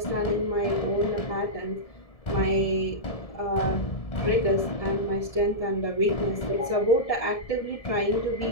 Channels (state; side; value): late; right; 1.7 ms